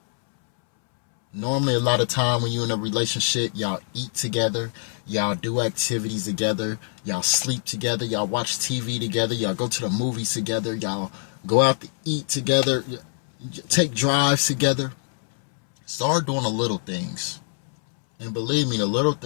Normally, a lot of time when you're in a relationship, y'all eat together, y'all do activities together, y'all sleep together, y'all watch TV together, y'all go to the movies together, y'all go out to eat together, take drives together. Start doing the little things. And believe me, the little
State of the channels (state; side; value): silent; right; 62 dB below the other